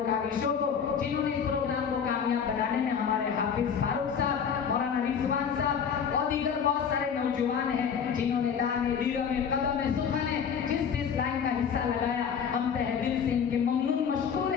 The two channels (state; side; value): quieter; right; 7.2 dB